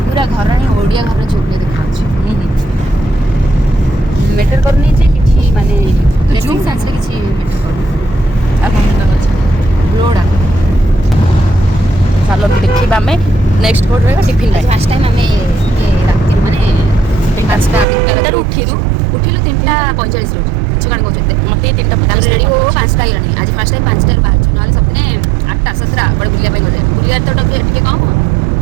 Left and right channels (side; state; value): left; drops out; at 17.9 s